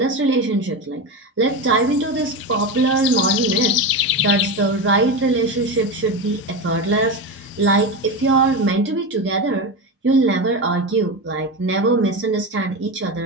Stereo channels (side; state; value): both; normal; correlation 0.19